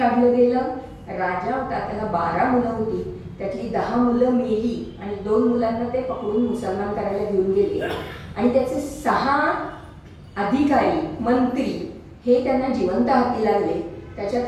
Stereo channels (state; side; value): identical; both; correlation 1.00